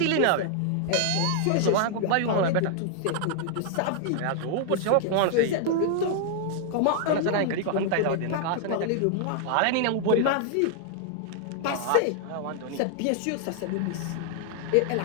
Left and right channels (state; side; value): different; both; correlation -0.01